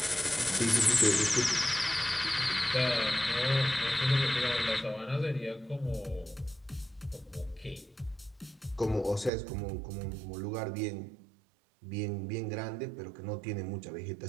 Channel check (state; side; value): drops out; left; at 9.3 s